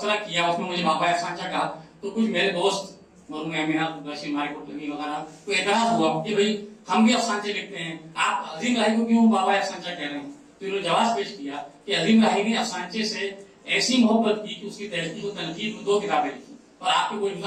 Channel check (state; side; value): identical; both; correlation 1.00